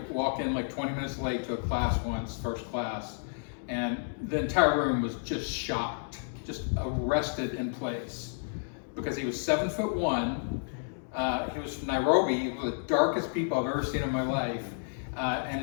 walk in like 20 minutes late to a class once, first class, and the entire room was just shocked, just arrested in place because he was 7'1". He was from Nairobi, one of the darkest people I've ever seen in my life, and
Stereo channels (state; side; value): silent; right; digital silence